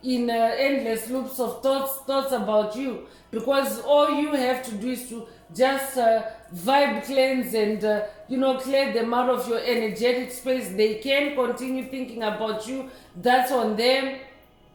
in endless loops of thoughts about you, because all you have to do is to just vibe cleanse and clear them out of your energetic space. They can continue thinking about you. That's on them.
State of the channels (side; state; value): both; identical; correlation 1.00